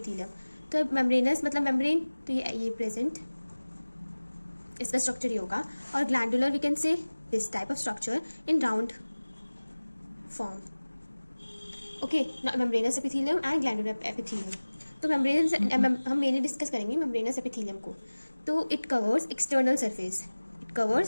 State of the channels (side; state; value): both; inverted; correlation -1.00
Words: तो membranous मतलब membrane, तो ये present, इसका structure ये होगा, और glandular we can say this type of structure in round form. Okay, membranes epithelium and glandular epithelium. तो मेम्ब्रेनस हम मेनली डिस्कस करेंगे मेम्ब्रेनस एपिथेलियम को. तो it covers external